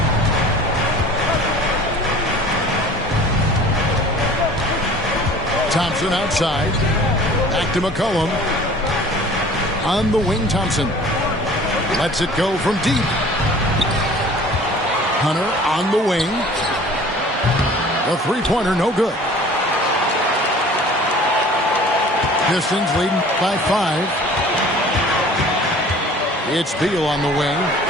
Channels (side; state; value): both; normal; correlation 0.47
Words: Thompson outside. Back to McCollum. On the wing, Thompson. Lets it go from deep. Hunter on the wing. A three-pointer, no good. Pistons leading by 5. It's Beal on the wing.